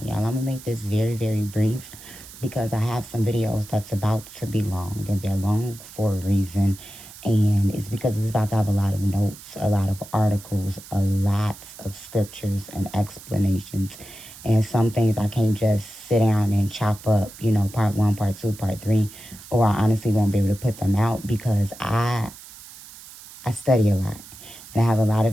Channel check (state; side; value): noise; right; hiss, 17 dB below the sound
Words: Y'all, I'm going to make this very, very brief because I have some videos that's about to be long, and they're long for a reason. And it's because it's about to have a lot of notes, a lot of articles, a lot of scriptures and explanations. And some things I can't just sit down and chop up, part one, part two, part three, or I honestly won't be able to put them out because I study a lot and I have a lot of